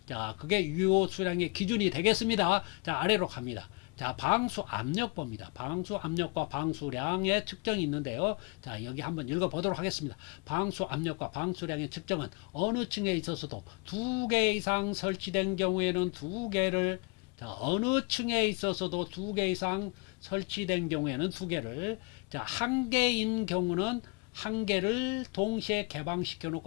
자, 그게 유효 수량의 기준이 되겠습니다. 자, 아래로 갑니다. 자, 방수 압력 봅니다. 방수 압력과 방수량의 측정이 있는데요. 자, 여기 한번 읽어보도록 하겠습니다. 방수 압력과 방수량의 측정은 어느 층에 있어서도 2개 이상 설치된 경우에는 2개를, 자, 어느 층에 있어서도 2개 이상 설치된 경우에는 2개를, 자, 1개인 경우는 1개를 동시에 개방시켜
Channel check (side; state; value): right; quieter; 30.2 dB